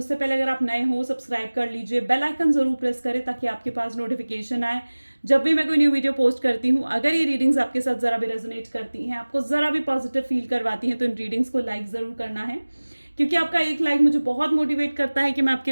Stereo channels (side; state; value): both; inverted; correlation -1.00